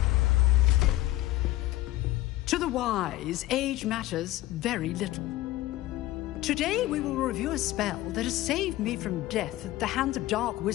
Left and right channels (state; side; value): quieter; right; 16.2 dB